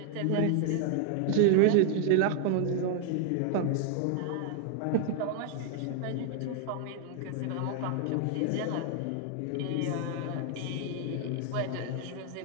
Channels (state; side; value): different; both; correlation 0.00